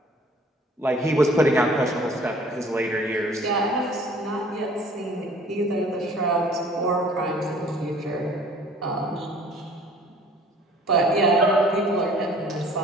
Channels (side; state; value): both; normal; correlation 0.52